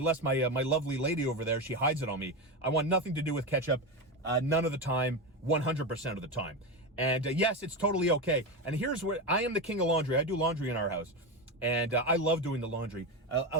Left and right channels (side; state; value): both; normal; correlation 0.16